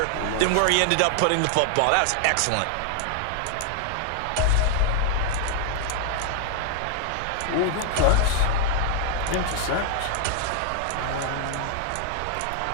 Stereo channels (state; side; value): different; both; correlation 0.00